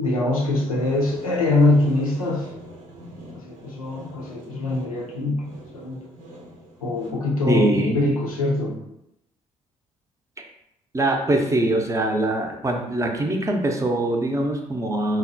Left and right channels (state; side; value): normal; both; correlation 0.65